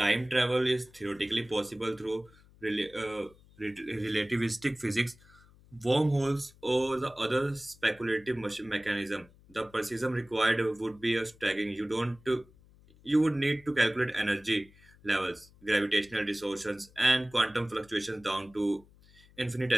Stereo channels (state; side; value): noise; left; hum, 26 dB below the sound